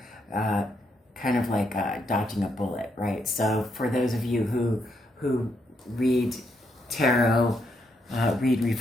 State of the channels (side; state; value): both; normal; correlation 0.77